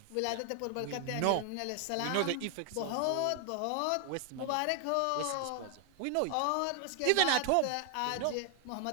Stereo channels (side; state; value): both; different; correlation 0.00